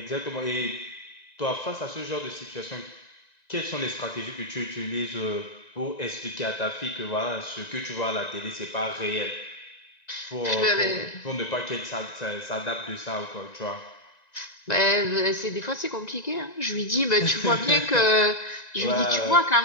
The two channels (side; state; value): right; late; 1.9 ms